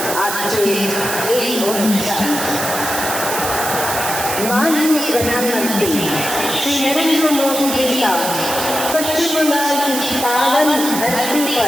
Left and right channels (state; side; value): noise; right; hiss, 4 dB below the sound